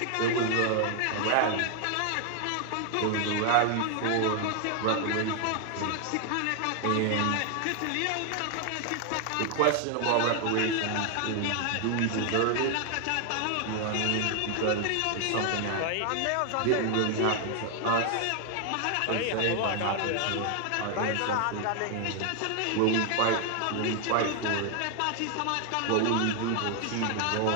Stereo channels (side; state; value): both; different; correlation 0.00